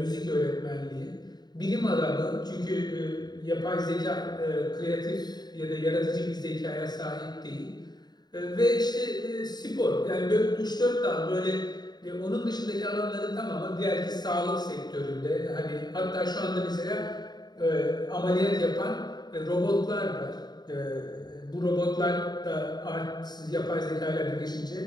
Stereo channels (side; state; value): right; late; 0.20 ms